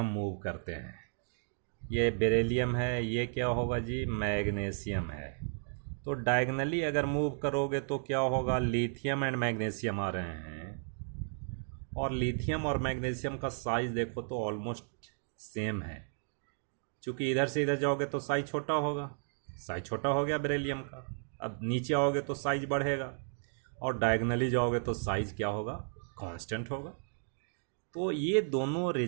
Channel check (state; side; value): silent; left; digital silence